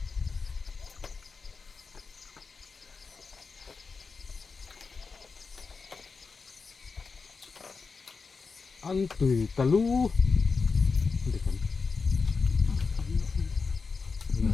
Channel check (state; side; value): quieter; right; 4.7 dB